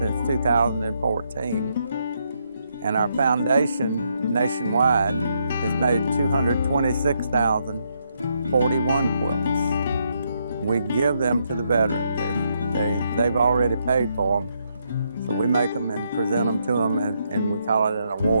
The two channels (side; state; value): both; inverted; correlation -0.77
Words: 2014, and our foundation nationwide has made 226,041 quilts. We give them to the veterans. They've already paid for them. So we make them and present them to them, and we call it an